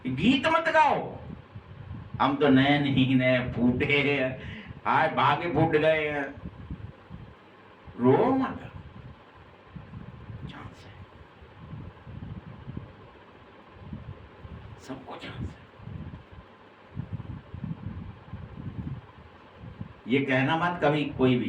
गीत मत गाओ, हम तो नैन ही नए फूटे, आए भागे फूट गए हैं। रो मत, चांस है, सबको चांस है। ये कहना मत कभी कोई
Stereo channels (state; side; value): identical; both; correlation 1.00